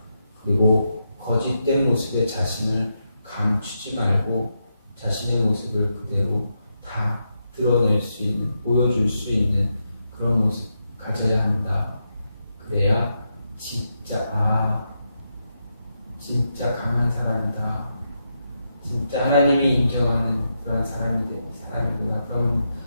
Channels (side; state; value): both; inverted; correlation -0.85